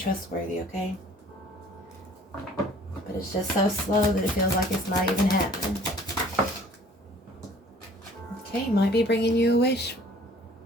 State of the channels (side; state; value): both; normal; correlation 0.53